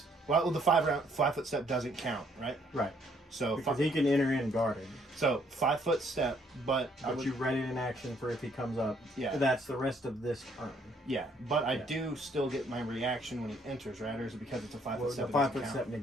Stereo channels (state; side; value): normal; both; correlation 0.66